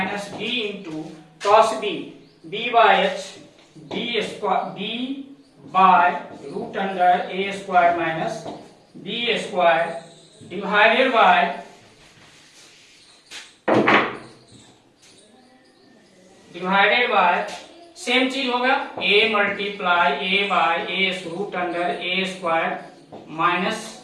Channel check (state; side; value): identical; both; correlation 1.00